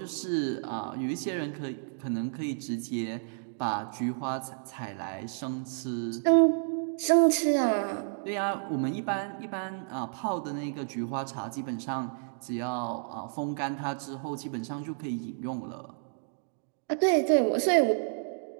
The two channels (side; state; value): left; silent; digital silence